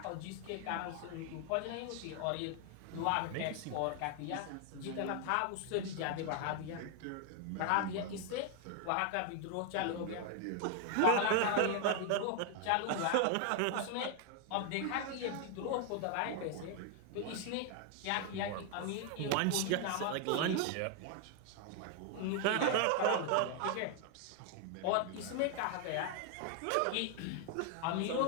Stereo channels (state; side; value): different; both; correlation 0.00